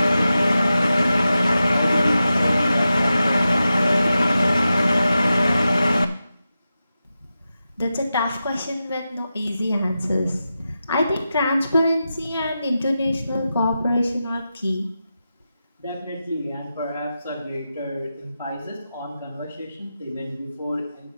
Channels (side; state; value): both; inverted; correlation -0.91